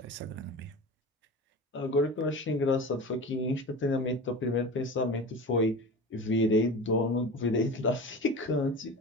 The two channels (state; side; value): normal; both; correlation 0.32